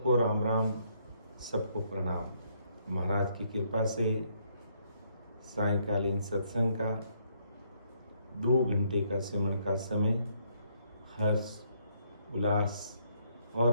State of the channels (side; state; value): both; inverted; correlation -0.71